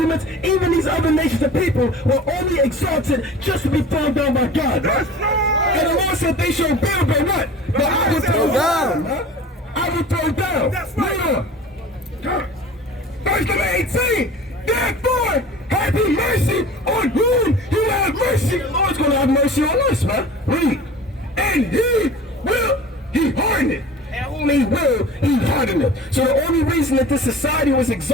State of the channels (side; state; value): both; normal; correlation 0.40